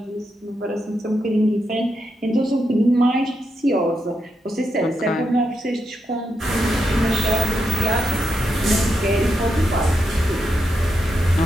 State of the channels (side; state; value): both; normal; correlation 0.84